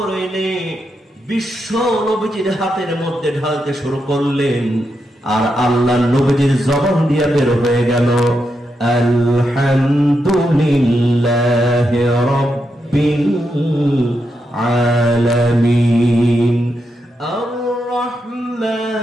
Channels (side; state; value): both; normal; correlation 0.84